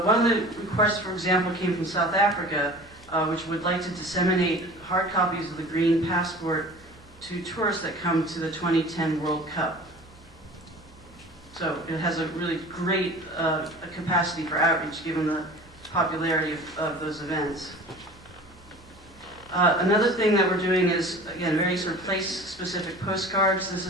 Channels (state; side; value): normal; both; correlation 0.41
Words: of the requests, for example, came from South Africa, which would like to disseminate hard copies of the Green Passport to tourists that come to the 2010 World Cup. So it has a really great capacity for outreach given the popularity of those events. Another thing that we're doing is, again, very sort of place-specific postcards. This